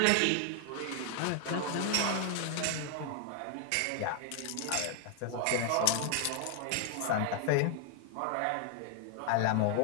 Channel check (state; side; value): different; both; correlation 0.00